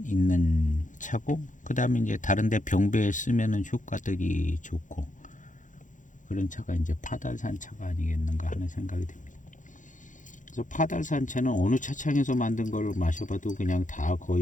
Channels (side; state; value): right; late; 0.37 ms